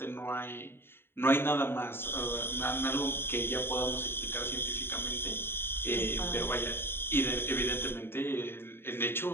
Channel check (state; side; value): late; right; 0.11 ms